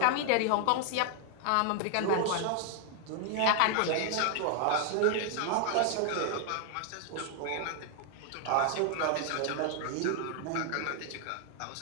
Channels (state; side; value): different; both; correlation 0.00